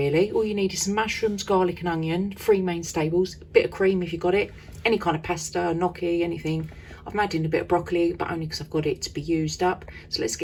all you need is some mushrooms, garlic and onion, 3 main staples, a bit of cream if you got it, any kind of pasta, gnocchi, anything. I've made in a bit of broccoli, but only because I've got it to be used up. So let's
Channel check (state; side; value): identical; both; correlation 1.00